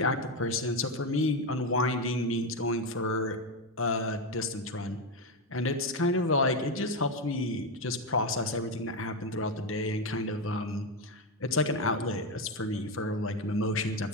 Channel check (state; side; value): normal; both; correlation 0.10